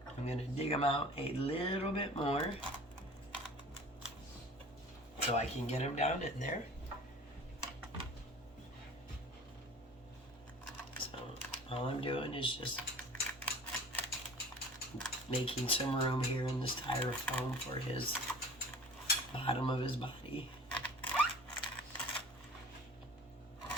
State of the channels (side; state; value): both; normal; correlation 0.43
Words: I'm going to dig him out a little bit more so I can get him down in there. So all I'm doing is just making some room here in the styrofoam for his bottom of his body.